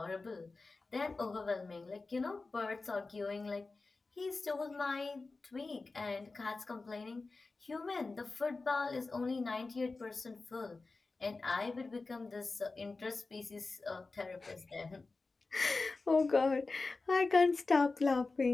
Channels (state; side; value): quieter; right; 3.7 dB